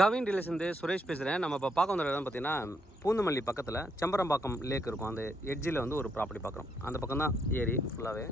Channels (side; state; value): both; normal; correlation 0.75